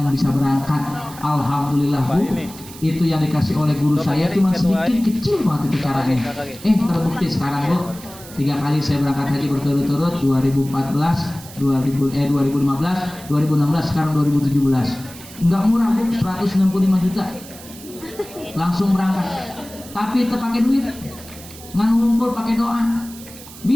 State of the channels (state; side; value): noise; right; hiss, 17 dB below the sound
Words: bisa berangkat. Alhamdulillah Bu, itu yang dikasih oleh guru saya cuma sedikit, kecil banget itu caranya. Terbukti sekarang Bu, 3 kali saya berangkat haji berturut-turut, 2014, 2015, 2016, sekarang 2017. Enggak murah Bu, 165 juta. Langsung berangkat, tapi terpakai duit, ngan ngumpul pakai doa.